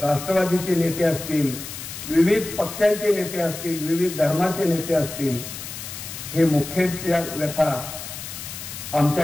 नेते असतील, विविध पक्षांचे नेते असतील, विविध धर्माचे नेते असतील, हे मुख्यच्या व्यथा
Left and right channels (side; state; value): left; noise; hiss, 10 dB below the sound